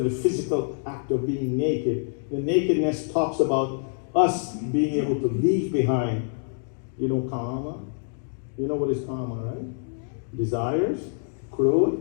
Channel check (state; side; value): silent; right; digital silence